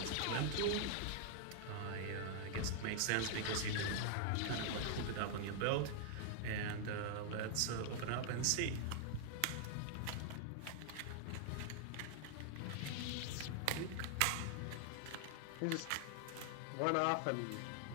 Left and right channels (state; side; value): different; both; correlation 0.00